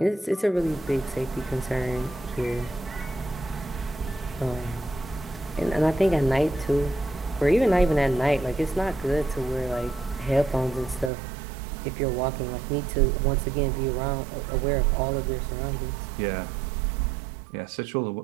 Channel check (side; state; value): left; drops out; at 11.1 s